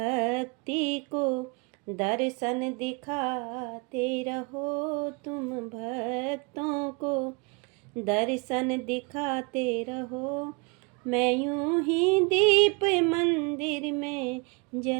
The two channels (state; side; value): quieter; left; 30.5 dB